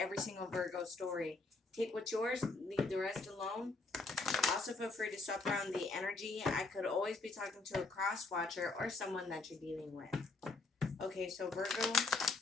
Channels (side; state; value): right; quieter; 3.5 dB